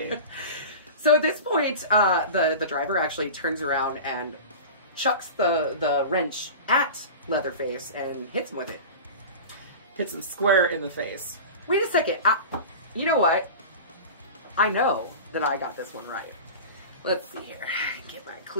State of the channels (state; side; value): inverted; both; correlation -0.32